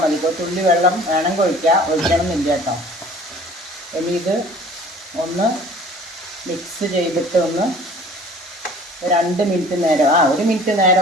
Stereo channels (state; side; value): normal; both; correlation 0.49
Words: മതി. ഒരു തുള്ളി വെള്ളം വേണമെങ്കിൽ ഒഴിക്കണമെന്നില്ല കേട്ടോ. ഇനി ഇത് ഒന്ന് മിക്സ് ചെയ്തിട്ട് ഒന്ന് 2 മിനിറ്റ് നേരം, 1 മിനിറ്റ് നേരം